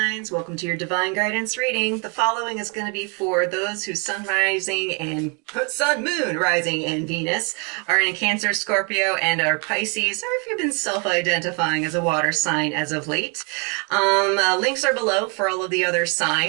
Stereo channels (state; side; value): quieter; left; 34.2 dB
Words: welcome to your divine guidance reading. The following is going to be for those whose sun rising and moon rising and Venus are in Cancer, Scorpio, and are Pisces, or if you've been self-identifying as a water sign as of late. Links are below for all of the other